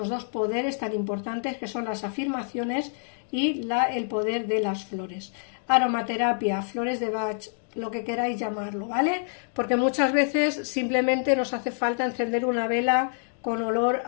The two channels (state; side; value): silent; right; digital silence